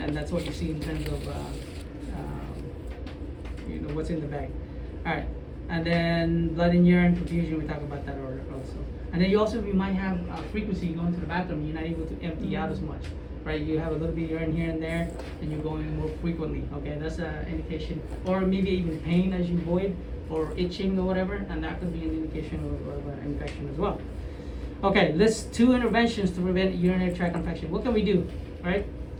that's what you see in terms of you know what's in the bag. All right, and then blood and urine confusion. We talk about that also. And then you might have frequency going to the bathroom. You're not able to empty out as much, right? You have a little bit of urine here and there, and you're going more frequently. Okay, that's an indication, or maybe even pain as you void, or itching or whatever, and that could be an indication of an infection as well. Okay, list 2 interventions to prevent urinary tract infection. What can we do, right?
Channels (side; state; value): both; identical; correlation 1.00